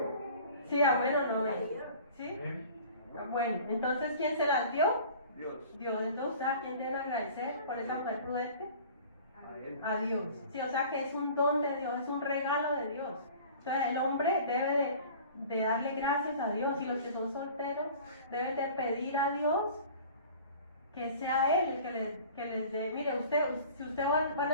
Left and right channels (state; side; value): inverted; both; correlation -0.45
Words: Sí, amén o no amén. ¿Sí? Bueno, entonces, ¿quién se las dio? Dios. Dios. Entonces, ¿a quién debe agradecer por esa mujer prudente? A Él. A Dios. Sí, o sea que es un don de Dios, es un regalo de Dios. Entonces el hombre debe de darle gracias a Dios, y los que son solteros deben de pedir a Dios que sea Él el que les dé. Mire, si ustedes van